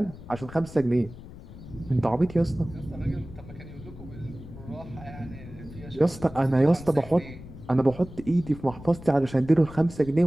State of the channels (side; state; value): left; noise; rumble, 15 dB below the sound